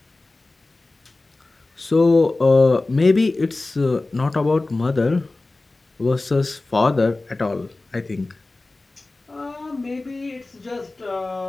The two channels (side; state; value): right; quieter; 3.1 dB